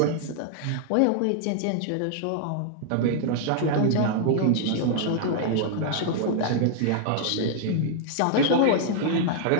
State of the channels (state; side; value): different; both; correlation -0.01